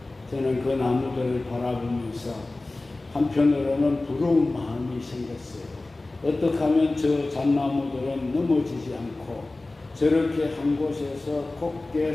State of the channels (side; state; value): right; quieter; 3.0 dB